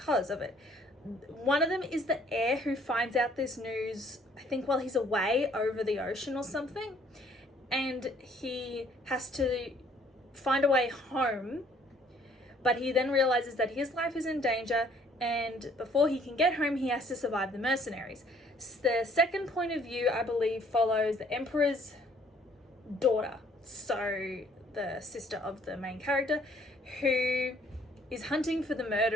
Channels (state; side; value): normal; both; correlation 0.61